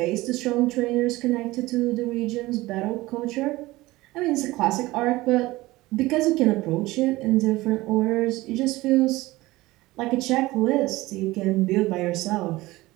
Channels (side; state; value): left; quieter; 19.3 dB